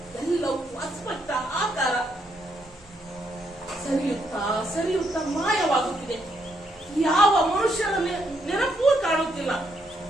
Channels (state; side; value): normal; both; correlation 0.76